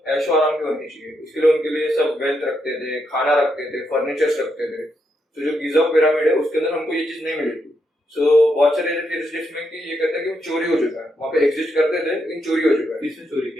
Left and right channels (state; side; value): normal; both; correlation 0.80